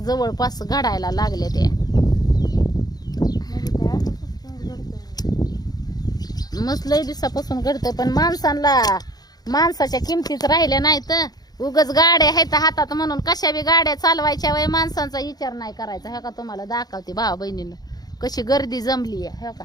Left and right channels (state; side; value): late; right; 0.19 ms